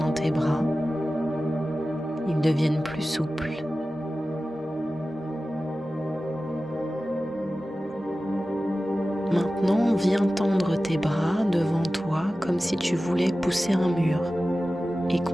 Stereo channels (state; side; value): normal; both; correlation 0.95